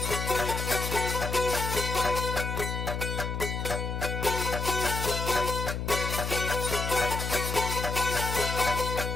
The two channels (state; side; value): noise; left; hum, 3 dB below the sound